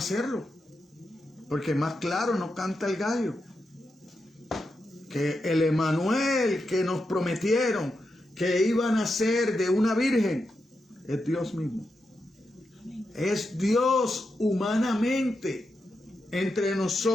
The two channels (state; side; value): normal; both; correlation 0.86